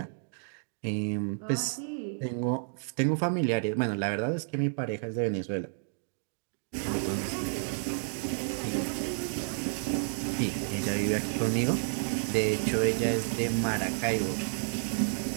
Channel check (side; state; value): left; silent; digital silence